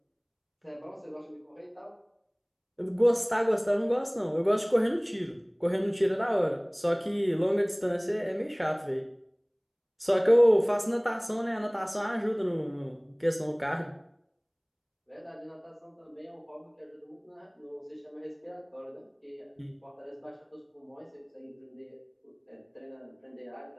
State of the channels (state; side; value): identical; both; correlation 1.00